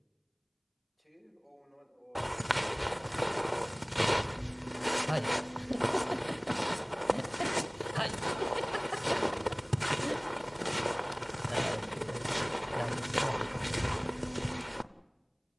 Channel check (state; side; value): identical; both; correlation 1.00